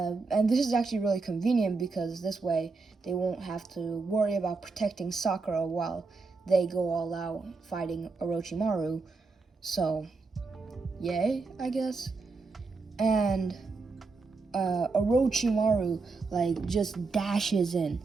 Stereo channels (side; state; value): left; quieter; 4.1 dB